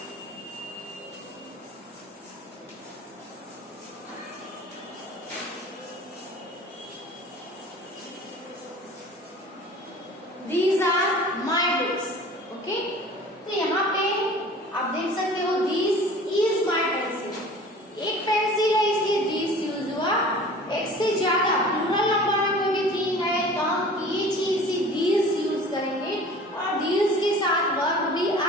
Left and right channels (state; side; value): normal; both; correlation 0.44